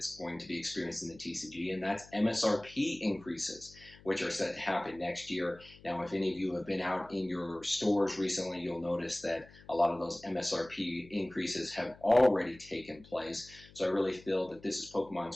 going to be experienced in the TCG, and that's MSRP increases, which are set to happen next year. Now, if any of you have been out in your stores recently, you'll notice that a lot of those MSRP increases have already taken place. So I really feel that this is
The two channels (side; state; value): left; noise; hum, 23 dB below the sound